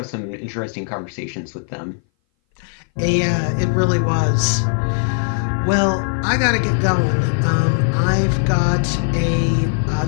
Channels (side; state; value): right; silent; 59 dB below the other